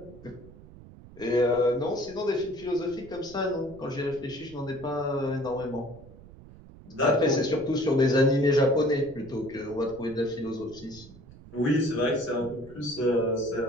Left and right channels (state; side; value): noise; right; rumble, 19 dB below the sound